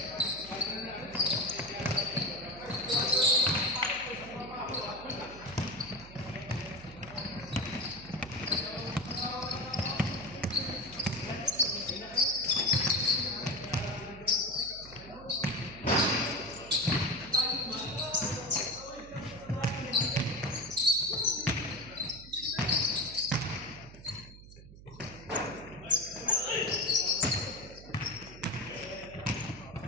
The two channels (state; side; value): noise; right; hum, 17 dB below the sound